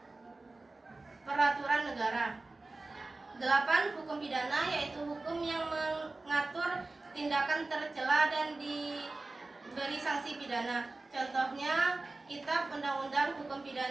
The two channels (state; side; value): quieter; left; 3.2 dB